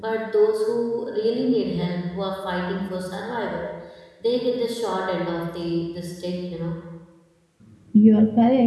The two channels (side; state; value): both; identical; correlation 1.00